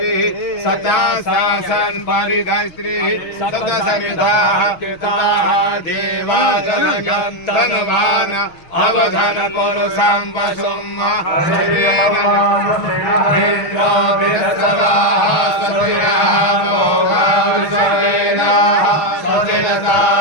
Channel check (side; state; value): right; late; 6.5 ms